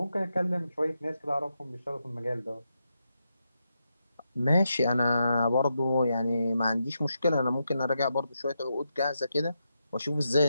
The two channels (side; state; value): both; inverted; correlation -0.85